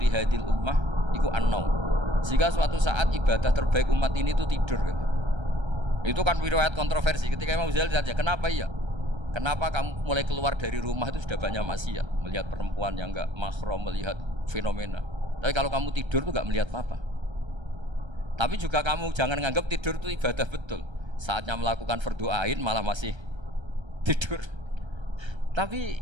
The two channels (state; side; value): late; left; 1.3 ms